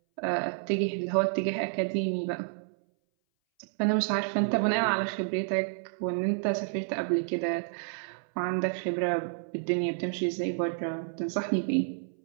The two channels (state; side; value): silent; left; 58 dB below the other